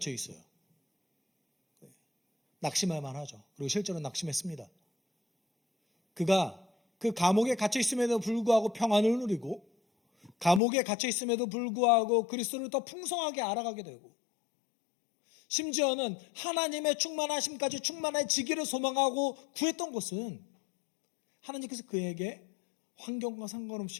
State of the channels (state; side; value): drops out; right; at 10.6 s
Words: 있어요. 낙심할 만하죠. 그리고 실제로 낙심했습니다. 그가 그 감옥에 갇혀 있음에도 불구하고 평안을 누리고, 감옥에 갇혀 있음에도 불구하고 그리스도를 더 풍성하게 알아가게 되고, 심지어는 하나님의 충만하심까지 충만해지기를 소망하고 구했던 것은 하나님께서 그에게 환경과